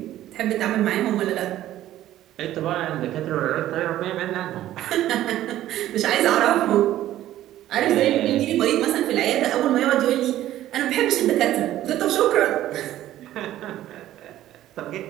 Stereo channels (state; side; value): quieter; left; 13.5 dB